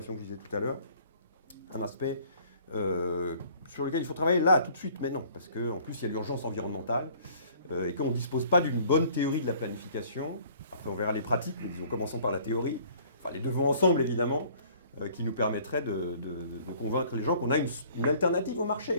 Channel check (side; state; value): both; inverted; correlation -0.55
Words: que je disais tout à l'heure, un aspect sur lequel il faut travailler là, tout de suite, maintenant, parce qu'en plus, il y a l'urgence environnementale, et qu'on ne dispose pas d'une bonne théorie de la planification. Après, on verra les pratiques, mais disons, commençons par la théorie, enfin les deux vont ensemble, évidemment, qui nous permettrait de convaincre les gens qu'on a une alternative au